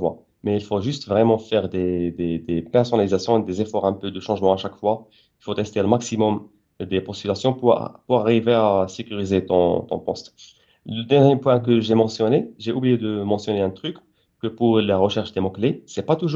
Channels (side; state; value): both; identical; correlation 1.00